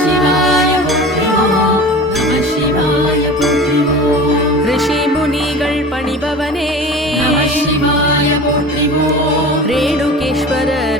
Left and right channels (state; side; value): normal; both; correlation 0.36